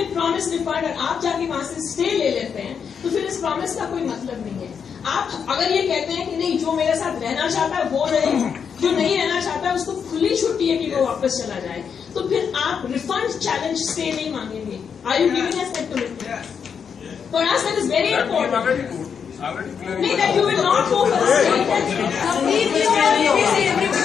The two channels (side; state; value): right; quieter; 6.9 dB